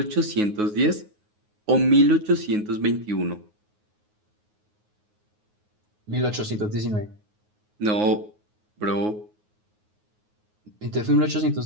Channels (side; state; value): left; late; 9.5 ms